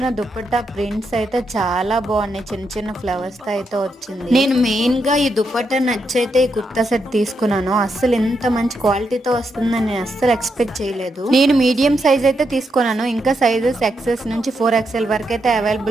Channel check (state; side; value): normal; both; correlation 0.82